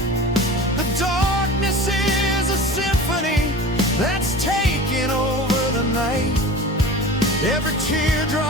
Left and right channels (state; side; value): normal; both; correlation 0.36